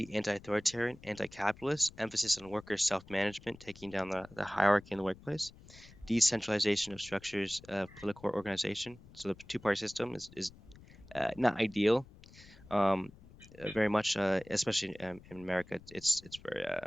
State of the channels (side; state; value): left; noise; rumble, 21 dB below the sound